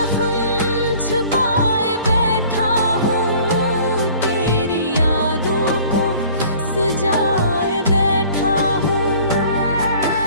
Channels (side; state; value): both; inverted; correlation -0.51